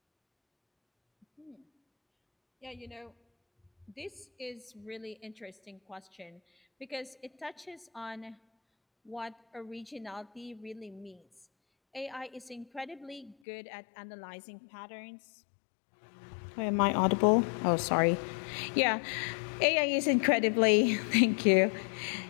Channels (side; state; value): right; drops out; at 13.4 s